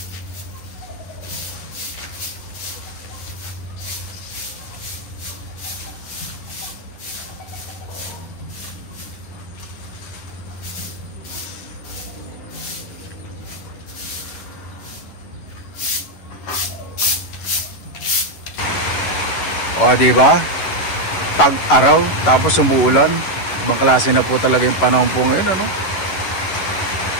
O, diba? Tag-araw, tapos umuulan. Ibang klase na po talaga yung panahon po ngayon, ano?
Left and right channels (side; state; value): right; late; 10 ms